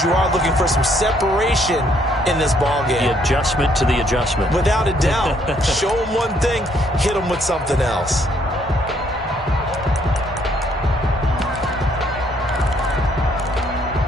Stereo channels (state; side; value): normal; both; correlation 0.67